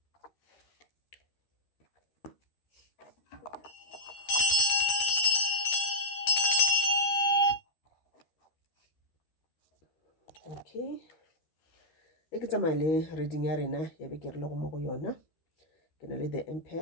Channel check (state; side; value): late; right; 13 ms